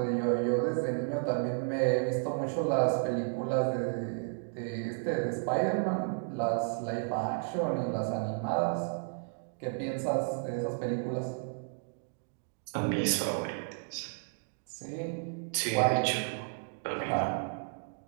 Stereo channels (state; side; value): silent; left; digital silence